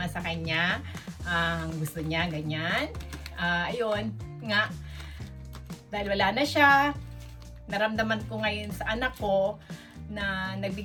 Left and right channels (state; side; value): identical; both; correlation 1.00